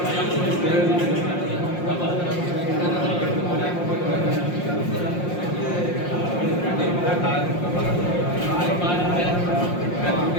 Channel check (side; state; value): right; late; 5.6 ms